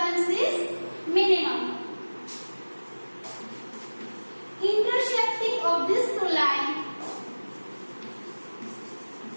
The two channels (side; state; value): both; inverted; correlation -1.00